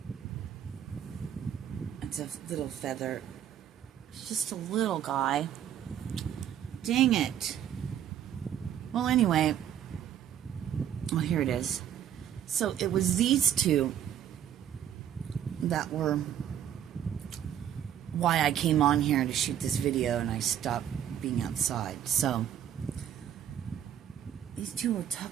It's a little feather. It's just a little guy. Dang it. Well, anyway. Well, here it is. So it was these two that were why I came on here to shoot this video, and I stopped being outside. So these two were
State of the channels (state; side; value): quieter; left; 10.0 dB